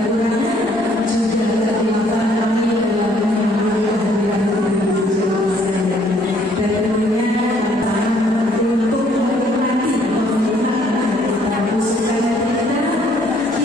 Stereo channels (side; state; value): both; normal; correlation 0.64